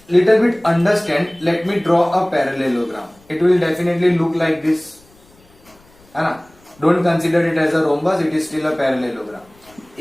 little bit understand, let me draw a parallelogram. It will definitely look like this, है ना। Don't consider it as a rhombus, it is still a parallelogram.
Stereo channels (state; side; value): noise; left; rumble, 29 dB below the sound